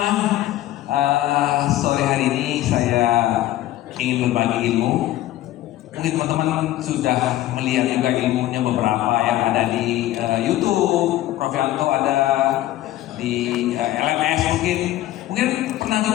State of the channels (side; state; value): right; quieter; 14.8 dB